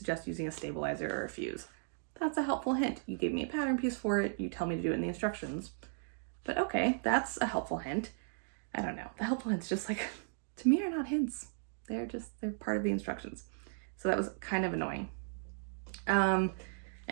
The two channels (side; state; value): left; silent; digital silence